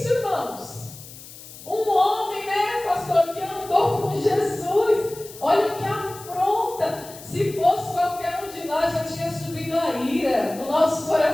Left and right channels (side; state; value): left; noise; hiss, 17 dB below the sound